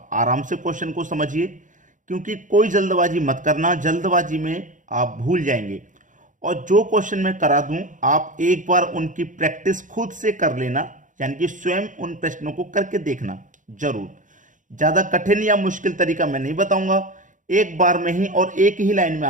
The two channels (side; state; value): left; late; 0.37 ms